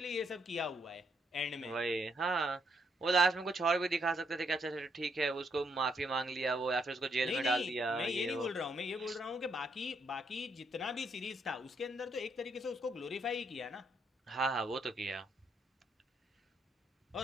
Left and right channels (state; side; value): normal; both; correlation 0.74